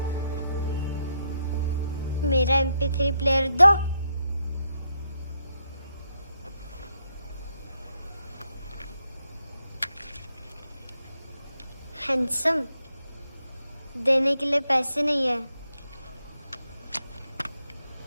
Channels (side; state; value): both; inverted; correlation -0.79